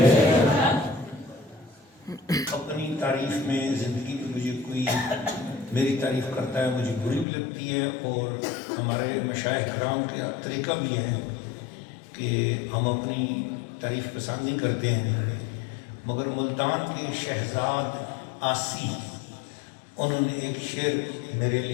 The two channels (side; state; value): right; drops out; at 7.2 s